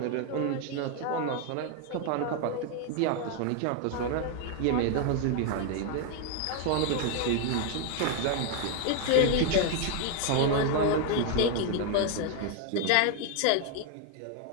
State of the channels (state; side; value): different; both; correlation 0.01